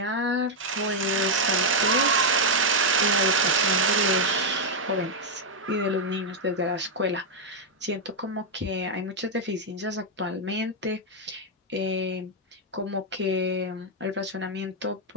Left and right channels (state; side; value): normal; both; correlation -0.01